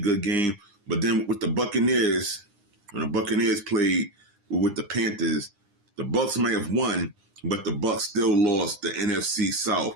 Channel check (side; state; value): left; late; 9.8 ms